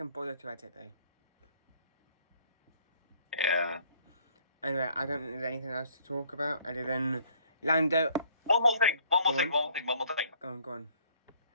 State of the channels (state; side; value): inverted; both; correlation -0.61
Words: bother to edit though. Yeah. Anyway, I don't think there's anything else to talk about other than Lando. One more thing. Go on. Go on.